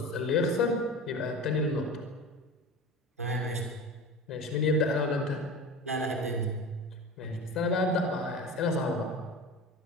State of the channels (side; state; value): both; normal; correlation 0.32